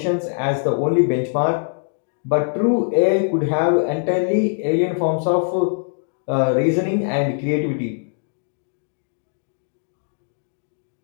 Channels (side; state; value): right; silent; digital silence